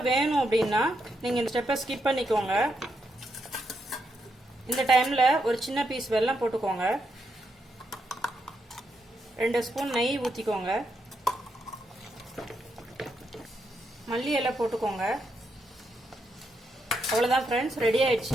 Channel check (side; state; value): both; normal; correlation 0.81